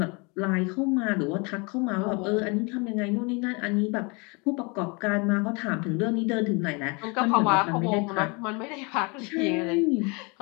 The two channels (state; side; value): quieter; right; 30.2 dB